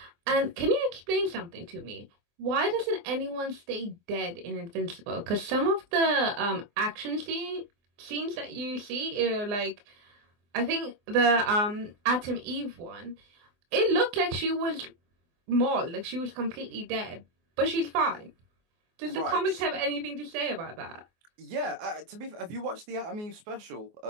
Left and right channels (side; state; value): left; late; 24 ms